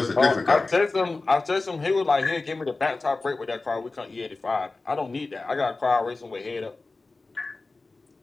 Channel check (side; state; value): right; quieter; 3.5 dB